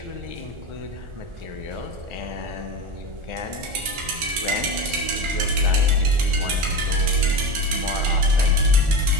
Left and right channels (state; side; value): late; left; 1.4 ms